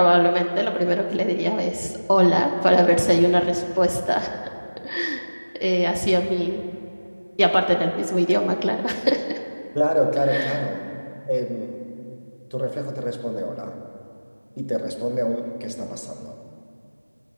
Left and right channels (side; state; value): both; inverted; correlation -1.00